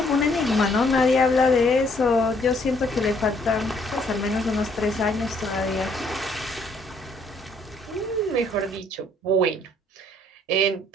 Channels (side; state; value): both; normal; correlation 0.65